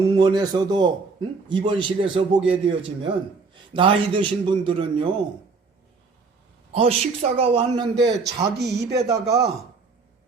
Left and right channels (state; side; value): quieter; left; 4.4 dB